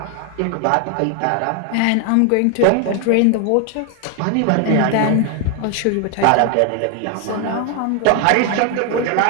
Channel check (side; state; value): both; different; correlation 0.01